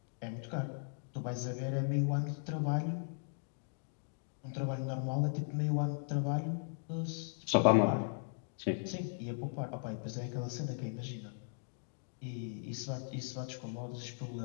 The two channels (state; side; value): silent; right; digital silence